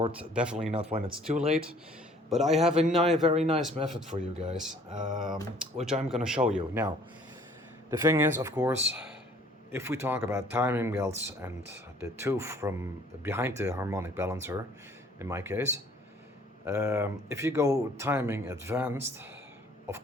definitely not when it's too late, but I have a very nice method for you guys, which I'm gonna show you. Now, the thing is, of course, if we talk about timing belts and the tooth from behind the harmonic balancer, in my case, if you go timing advanced, of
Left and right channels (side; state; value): both; normal; correlation 0.56